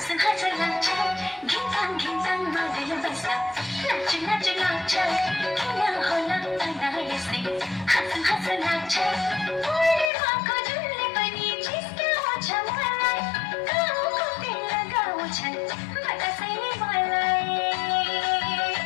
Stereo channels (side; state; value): right; drops out; at 10.1 s